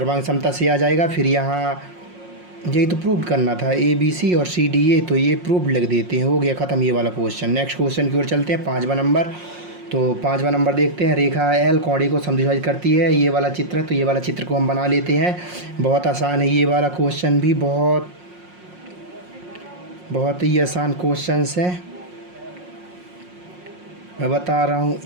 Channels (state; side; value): late; left; 5.6 ms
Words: समता से आ जाएगा। फिर यहाँ यही तो प्रूव करना था, ए बी सी और सी डी ए, तो ये प्रूव लिख देते हैं। हो गया ख़त्म ये वाला क्वेश्चन। नेक्स्ट क्वेश्चन की ओर चलते हैं, 5वां नंबर। तो 5वां नंबर देखते हैं। रेखा एल कोण ए को समद्विभाजित करती है। ये वाला चित्र है तो ये वाला चित्र को हम बना लेते हैं। बहुत आसान है ये वाला क्वेश्चन भी, बहुत ही आसान क्वेश्चंस है। मैं बता रहा हूँ